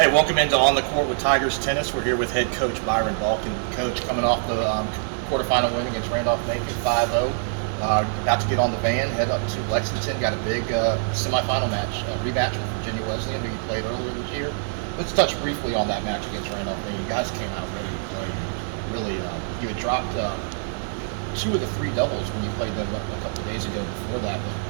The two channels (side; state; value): left; silent; 62 dB below the other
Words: welcome into On the Court with Tigers Tennis. We're here with head coach Byron Balkin. Coach, coming off the quarterfinal win against Randolph-Macon, 5-0. About to get on the van, head up to Lexington. Got a big semifinal match, rematch with Virginia Wesleyan, who you played earlier this year. Let's touch briefly on that match against Randolph-Macon. You guys came out ready to play. Really, you had dropped 2 of the 3 doubles when you played them a couple of days ago before that,